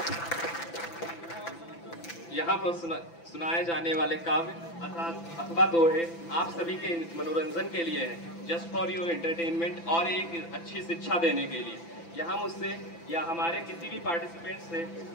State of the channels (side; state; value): right; late; 5.9 ms